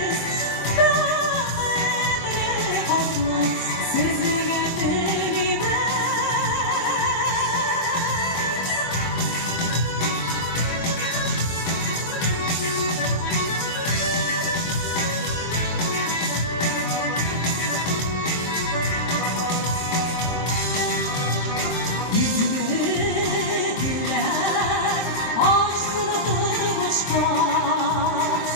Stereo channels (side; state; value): right; late; 23 ms